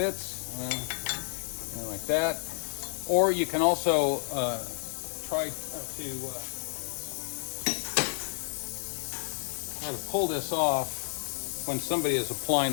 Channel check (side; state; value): right; silent; digital silence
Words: something like that. Or you can also try to pull this off when somebody is applying